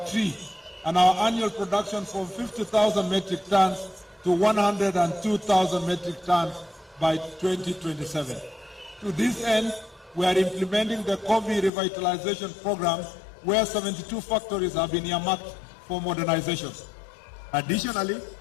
tree, and our annual production from 50,000 metric tons to 102,000 metric tons by 2027. To this end, we are implementing the coffee revitalization program, where 72 factories have been earmarked for modernization. Additionally,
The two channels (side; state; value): right; drops out; at 11.7 s